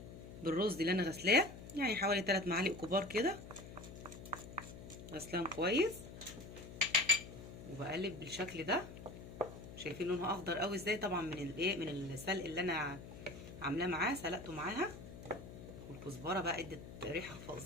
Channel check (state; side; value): noise; left; hum, 13 dB below the sound